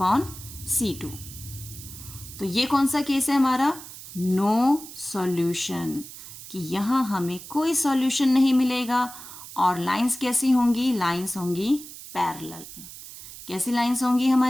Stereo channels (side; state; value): right; noise; hiss, 14 dB below the sound